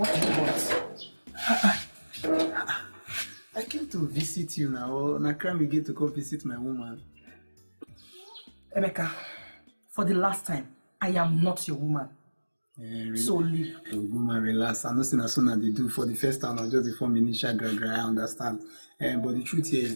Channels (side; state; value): both; inverted; correlation -1.00